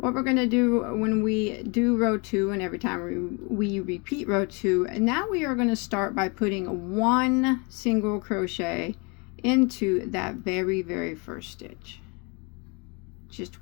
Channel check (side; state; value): right; quieter; 31.2 dB